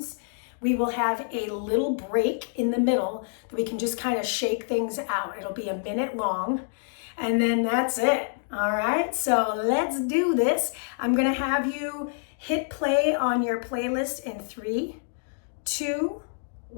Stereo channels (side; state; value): right; silent; digital silence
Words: We will have a little break in the middle that we can just kind of shake things out. It'll be a minute long, and then that's it. All right, so let's do this. I'm going to have you hit play on your playlist in 3, 2,